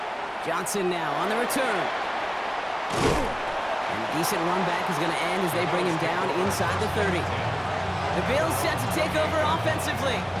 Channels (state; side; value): identical; both; correlation 1.00